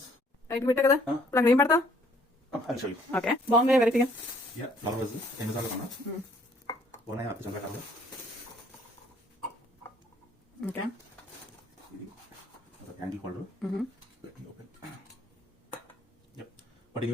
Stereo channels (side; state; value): both; normal; correlation 0.61